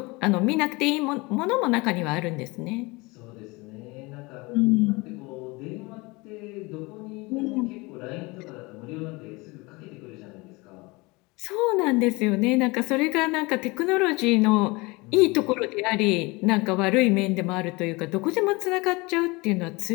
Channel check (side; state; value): right; quieter; 24.6 dB